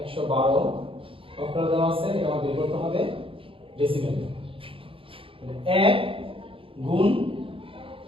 অক্টাল দেওয়া আছে, এটা আমাদের বের করতে হবে ডেসিমেল। 1 গুণ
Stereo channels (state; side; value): late; left; 0.26 ms